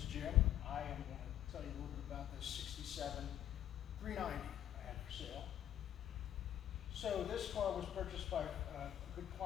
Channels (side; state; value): right; quieter; 11.2 dB